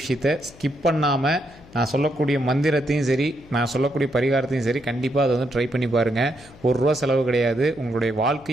ஸ்கிப் பண்ணாமல் நான் சொல்லக்கூடிய மந்திரத்தையும் சரி, நான் சொல்லக்கூடிய பரிகாரத்தையும் சரி, கண்டிப்பாக அதை வந்து ட்ரை பண்ணி பாருங்கள். ₹1 செலவு கிடையாது. உங்களுடைய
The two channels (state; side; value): noise; left; hum, 23 dB below the sound